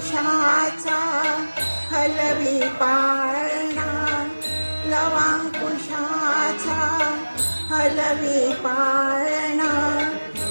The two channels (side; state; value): both; inverted; correlation -1.00